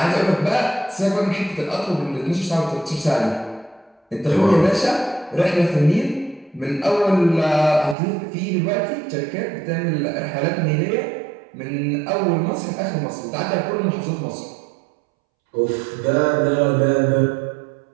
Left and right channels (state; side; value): drops out; left; at 8.0 s